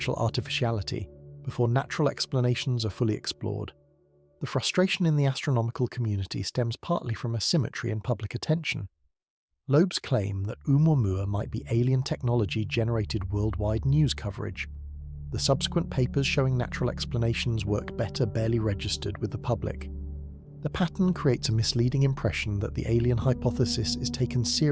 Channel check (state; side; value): identical; both; correlation 1.00